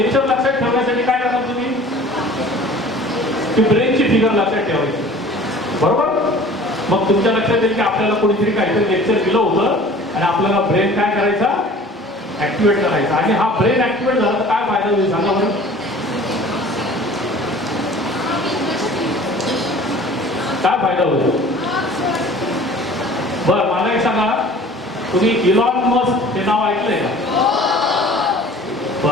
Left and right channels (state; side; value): normal; both; correlation 0.46